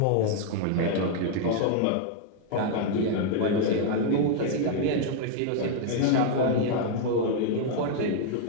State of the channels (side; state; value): both; different; correlation -0.01